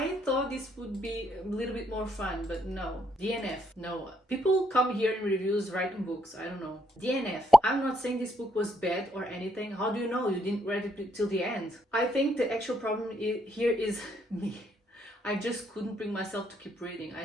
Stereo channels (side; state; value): both; normal; correlation 0.74